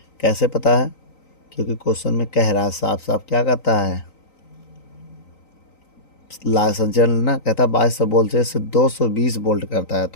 कैसे पता है, क्योंकि क्वेश्चन में कह रहा है साफ साफ, क्या कहता है, संचालन ना, कहता है 2200 वोल्ट से 220 वोल्ट करता है।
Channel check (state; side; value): late; right; 3.9 ms